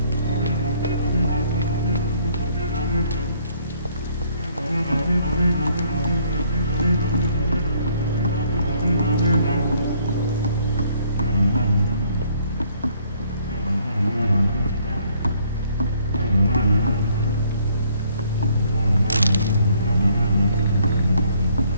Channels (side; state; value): both; inverted; correlation -0.64